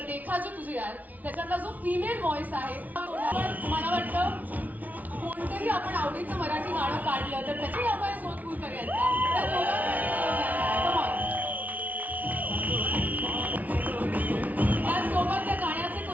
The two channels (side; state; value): left; late; 0.075 ms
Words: देखा जो तुझे यार, त्याच्यातला जो फिमेल व्हॉइस आहे, मला वाटतं कोणतंही आपण आवडीचं मराठी गाणं काढलं तर त्याची आपण सोदपूर करायचा. त्याचसोबत त्या गाण्याचे